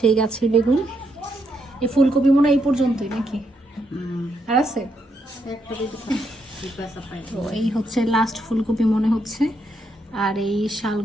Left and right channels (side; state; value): both; normal; correlation 0.78